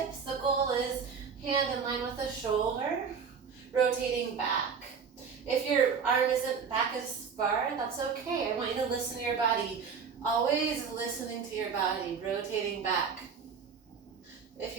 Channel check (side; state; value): left; quieter; 6.1 dB